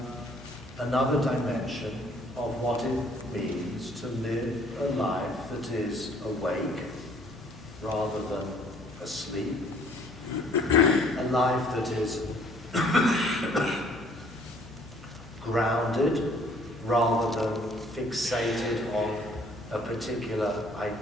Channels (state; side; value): noise; left; hum, 20 dB below the sound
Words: another dimension of what it means to live a life that is awake rather than asleep, a life that is grounded rather than fixated on a particular